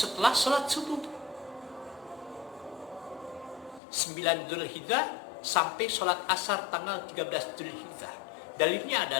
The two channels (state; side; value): drops out; right; at 3.8 s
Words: salat subuh 9 Dzulhijjah sampai salat asar tanggal 13 Dzulhijjah. Dalilnya